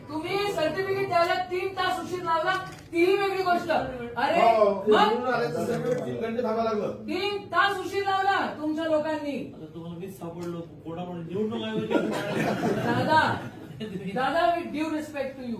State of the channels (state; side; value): identical; both; correlation 1.00